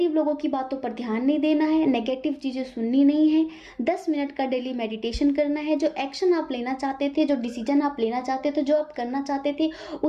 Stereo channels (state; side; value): identical; both; correlation 1.00